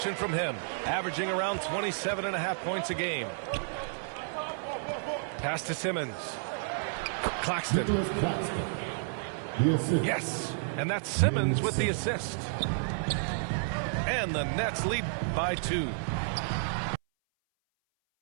from him, averaging around 27.5 points a game. Pass to Simmons. Claxton. Yes, and that's Simmons with the assist. And the Nets lead by 2.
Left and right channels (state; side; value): silent; left; 57 dB below the other